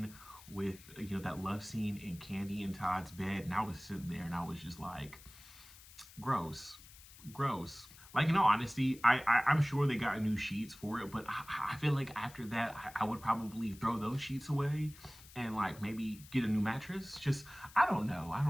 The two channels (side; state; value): left; noise; hiss, 20 dB below the sound